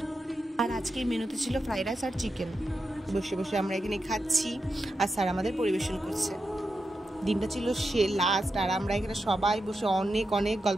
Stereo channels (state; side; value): normal; both; correlation 0.88